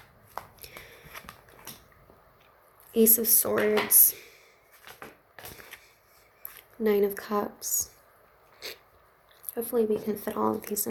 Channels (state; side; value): identical; both; correlation 1.00